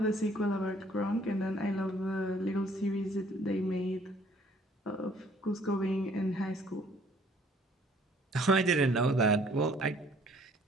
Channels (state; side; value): normal; both; correlation 0.59